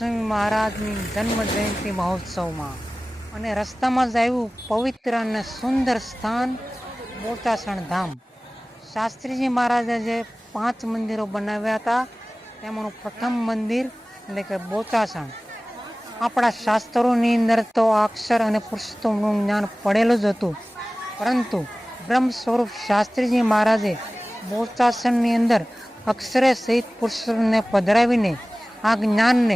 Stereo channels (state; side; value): normal; both; correlation 0.98